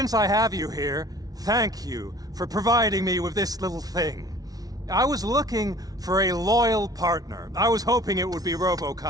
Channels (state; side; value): late; left; 0.18 ms